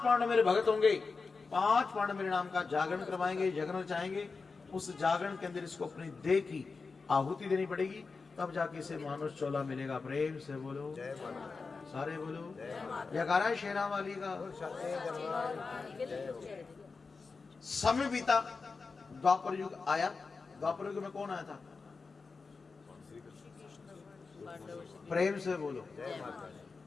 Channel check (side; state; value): right; quieter; 4.4 dB